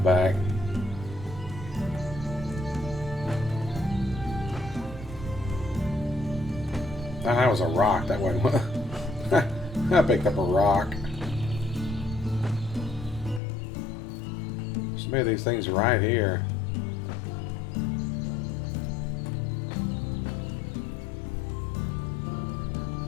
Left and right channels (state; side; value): drops out; right; at 13.4 s